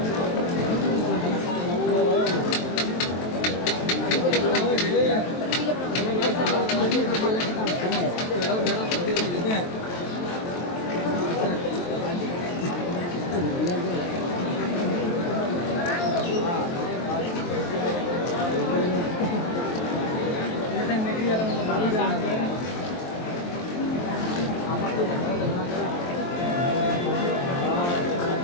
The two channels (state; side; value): late; right; 23 ms